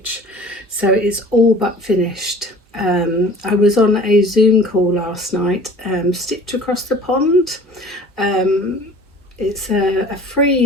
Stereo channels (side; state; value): both; normal; correlation 0.46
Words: so it's all but finished. I was on a Zoom call last night, Stitch Across the Pond. It's a